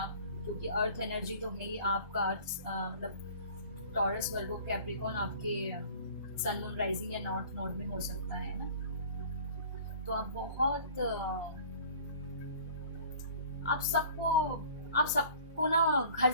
क्योंकि अर्थ एनर्जी तो है ही आपका। अर्थ मतलब टॉरस, वर्गो, कैप्रिकॉन आपके सन, मून, राइजिंग या नॉर्थ नोड में हो सकता है ना। तो आप बहुत आप सबको ना घर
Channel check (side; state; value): both; inverted; correlation -0.47